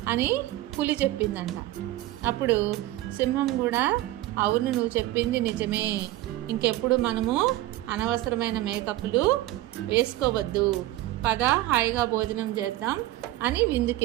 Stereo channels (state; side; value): quieter; left; 15.9 dB